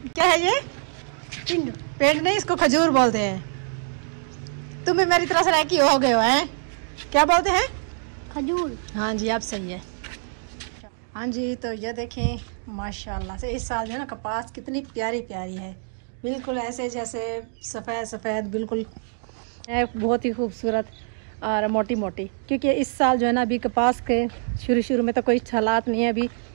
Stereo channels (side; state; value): left; silent; digital silence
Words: क्या है ये? पेंट। पेंट नहीं इसको खजूर बोलते हैं। तुम भी मेरी तरह से रैकी हो गए हो हैं? क्या बोलते हैं? खजूर। हाँ जी आप सही है। हाँ जी तो ये देखें माशाल्लाह से इस साल जो है ना कपास कितनी प्यारी प्यारी है, बिल्कुल ऐसे जैसे सफ़ेद सफ़ेद बिल्कुल है, बहुत ही खूबसूरत और मोटी मोटी। क्योंकि इस साल जो है ना अभी कपास के शुरू में तो कोई हालात नहीं है। अभी